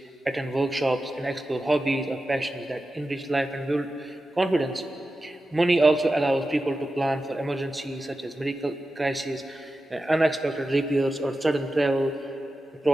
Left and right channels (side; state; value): both; normal; correlation 0.92